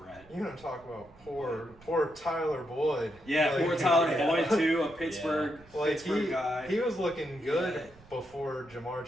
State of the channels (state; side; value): noise; right; rumble, 25 dB below the sound